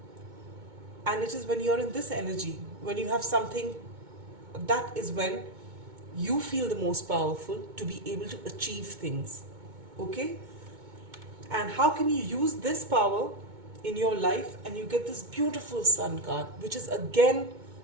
And it is when you're in this energy, when you have something, that is when you feel the most powerful to be able to achieve things. Okay. And how can you use this power in your life? And you get this beautiful Sun card, which is again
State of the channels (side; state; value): left; late; 2.2 ms